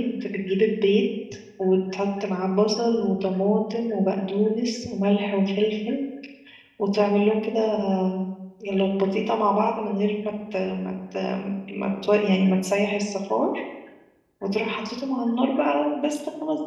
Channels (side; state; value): both; identical; correlation 1.00